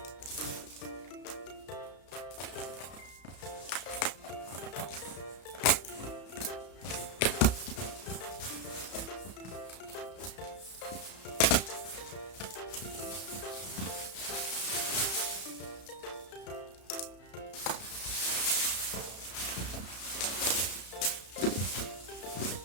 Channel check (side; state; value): right; late; 33 ms